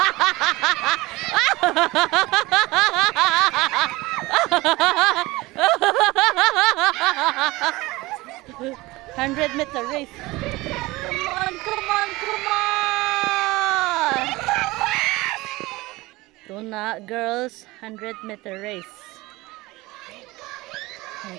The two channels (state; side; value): quieter; left; 20.7 dB